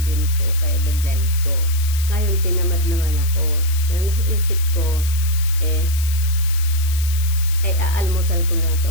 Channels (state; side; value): noise; left; hiss, 11 dB below the sound